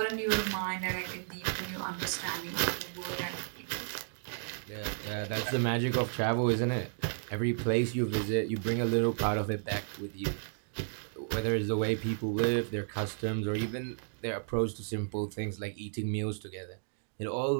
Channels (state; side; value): silent; left; digital silence